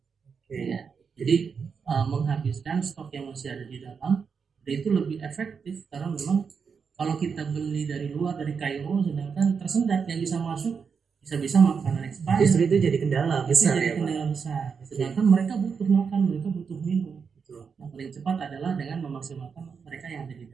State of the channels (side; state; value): left; quieter; 6.0 dB